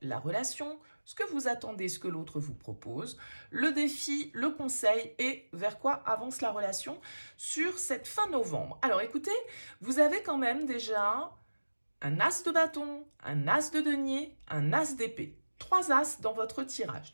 la relation, ce que vous attendez, ce que l'autre vous propose, le défi, le conseil et vers quoi avance la relation sur cette fin novembre. Alors écoutez, vous avez quand même déjà un as de bâton, un as de denier, un as d'épée. Trois as dans votre tirage.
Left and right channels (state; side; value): inverted; both; correlation -1.00